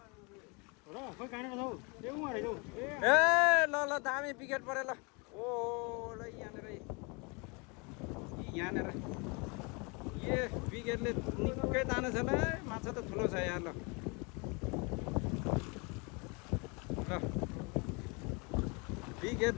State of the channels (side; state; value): right; quieter; 30.7 dB